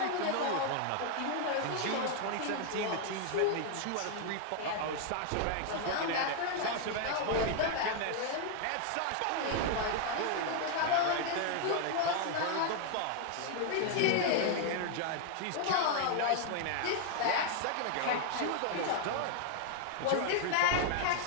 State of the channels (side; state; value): both; different; correlation 0.00